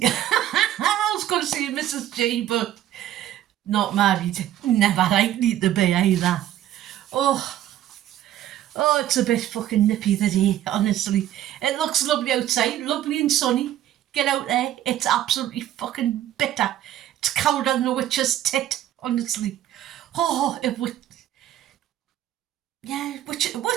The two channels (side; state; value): left; quieter; 12.4 dB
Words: I was going to say Mrs. G, but not married. Never likely to be either. Oh, it's a bit fucking nippy today, honestly. It looks lovely outside, lovely and sunny. Get out there, it's absolutely fucking bitter. It's colder than a witch's tit, honestly. Oh, it would... Yeah,